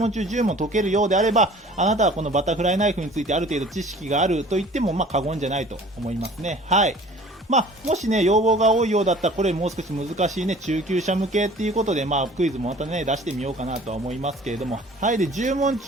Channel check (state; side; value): normal; both; correlation 0.48